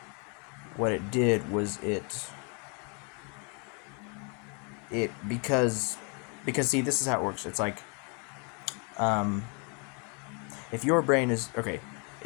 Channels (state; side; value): quieter; right; 35.7 dB